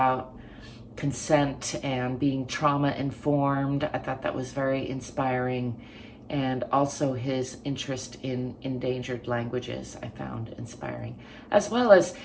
consent and being trauma informed. I thought that was very inspiring. And also his interest in endangered languages I found inspiring, as well as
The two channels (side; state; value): both; identical; correlation 1.00